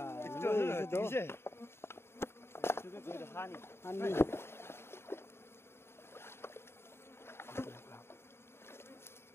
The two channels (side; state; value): right; late; 0.12 ms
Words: 이제. 저게 저기 한이. 한이.